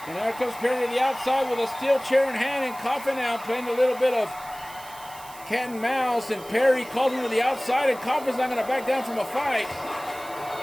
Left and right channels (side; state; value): right; noise; hiss, 18 dB below the sound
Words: And there comes Perry to the outside with a steel chair in hand, and Coffin now playing a little bit of cat and mouse, and Perry calls him to the outside, and Coffin's not going to back down from a fight.